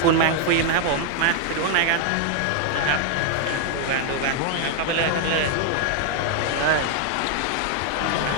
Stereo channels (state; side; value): different; both; correlation 0.00